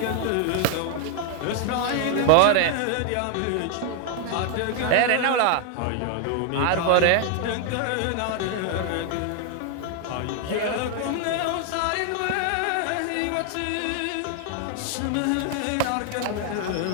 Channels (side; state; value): both; different; correlation 0.00